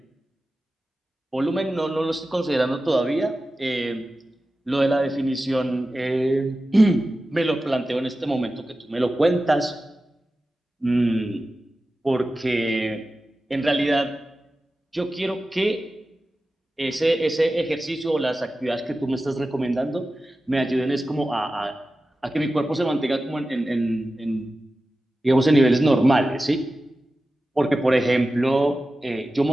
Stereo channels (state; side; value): normal; both; correlation 0.94